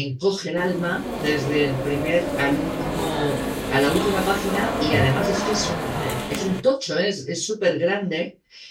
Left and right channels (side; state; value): both; identical; correlation 1.00